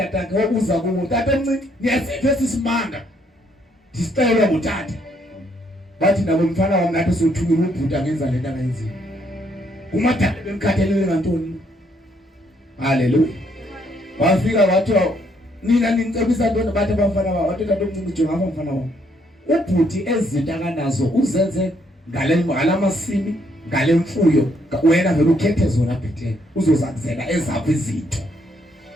akhe wabuza kuwo tata omncinci niyasiphe sisimanga. Disicela ngutata. Bathi nabo mfana wami nathi sothukile ubhuta ngenza lento angayenzile. Umadala bemkhathalele ngantoni? Hallelujah. Wafika wathi nina ninicebisa ntoni bathi abafana babo wathi tata omncinci jonga apha mfana wami. Ubhuti ezinto akanazo uzenze ngalamasimi ngale mfuyo wena vele ukhethe zona bhethe uzozakuzela ezaphi izinto.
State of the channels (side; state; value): both; normal; correlation 0.71